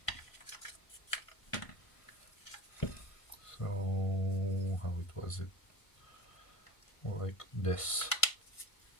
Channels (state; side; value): late; right; 1.5 ms